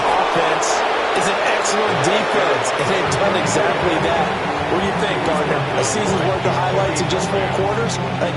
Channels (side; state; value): both; identical; correlation 1.00